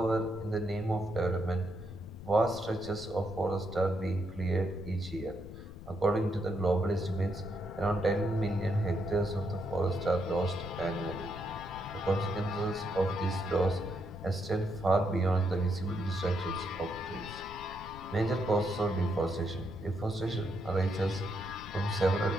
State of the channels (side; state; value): left; noise; rumble, 14 dB below the sound